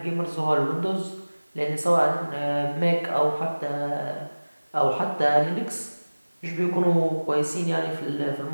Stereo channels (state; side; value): inverted; both; correlation -1.00